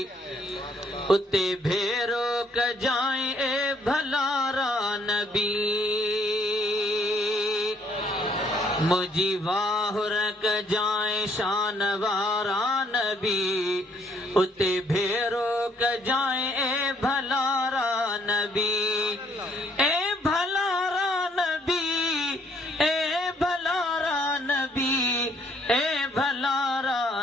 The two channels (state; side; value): normal; both; correlation 0.66